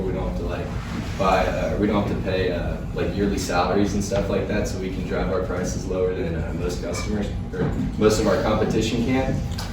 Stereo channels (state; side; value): identical; both; correlation 1.00